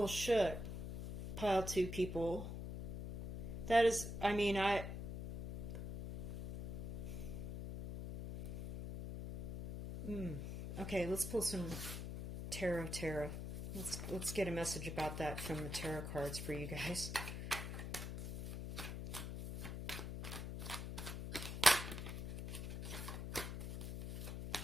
shook. Pile 2 people. That is, okay, let's pull some tarot. Let's get a message about that from the tarot cards for you guys.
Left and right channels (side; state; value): left; noise; hum, 5 dB below the sound